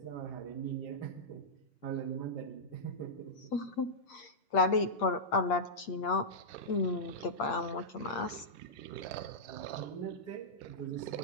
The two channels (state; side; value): late; right; 8.5 ms